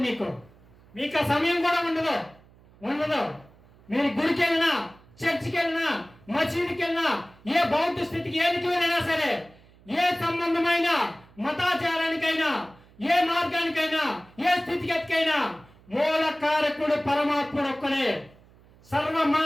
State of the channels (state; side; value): noise; right; hum, 27 dB below the sound